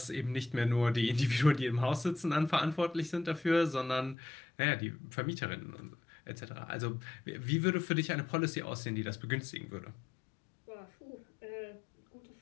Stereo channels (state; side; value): drops out; right; at 4.2 s